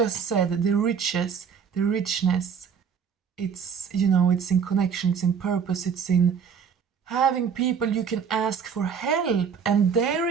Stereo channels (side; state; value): left; quieter; 6.8 dB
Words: said, the riches, the richness, it's, you know, it's in connection, it's in purpose, it's in having people you can ask for help and